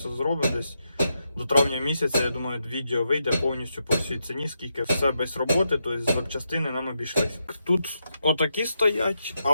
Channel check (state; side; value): inverted; both; correlation -0.84